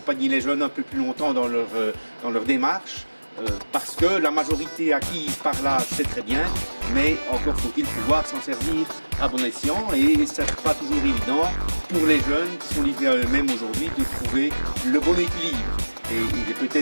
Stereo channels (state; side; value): inverted; both; correlation -1.00